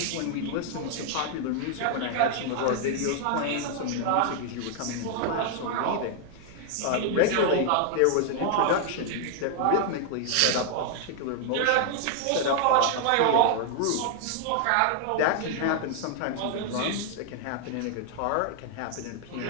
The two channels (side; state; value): both; different; correlation 0.00